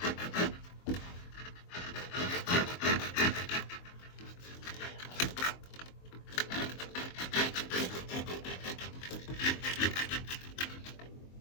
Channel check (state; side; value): late; right; 23 ms